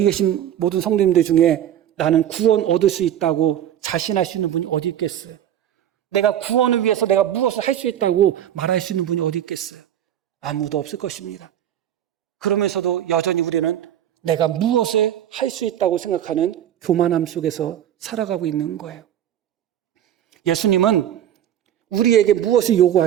계신 모든 성도님들 중에 나는 구원 얻을 수 있다고 자신할 수 있는 분이 어디 있겠어요? 내가 구원을 위해서 내가 무엇을 할 수 있다고 말할 수 있는 분이 어디 있겠어요? 아무도 없을 것입니다. 그러면서도 여전히 우리는 내가 무엇을 할 수 있다고 생각하는 교만함 속에서 살아가고 있는 거예요. 예수님은 우리에게 무엇을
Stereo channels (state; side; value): quieter; left; 10.9 dB